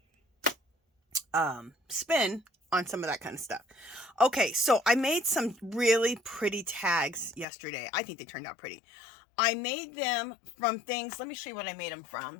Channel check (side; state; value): right; drops out; at 7.5 s